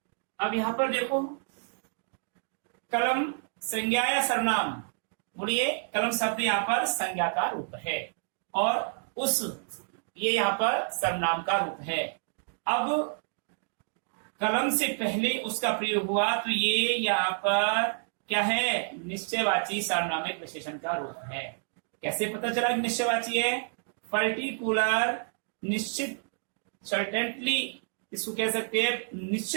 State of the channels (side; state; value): left; silent; digital silence